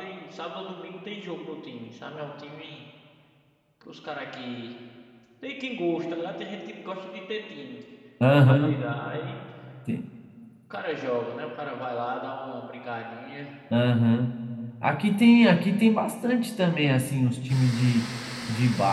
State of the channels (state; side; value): identical; both; correlation 1.00